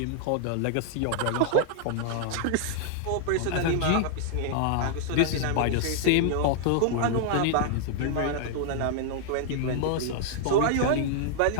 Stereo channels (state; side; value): different; both; correlation -0.01